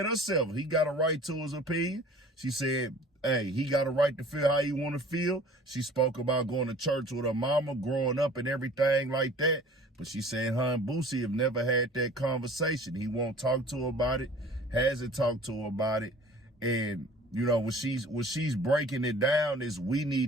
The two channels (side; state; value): both; normal; correlation 0.47